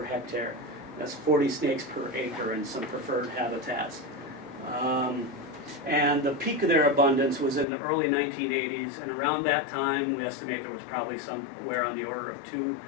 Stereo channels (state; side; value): drops out; right; at 7.7 s